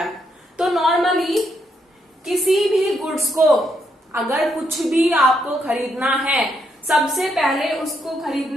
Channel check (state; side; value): normal; both; correlation 0.77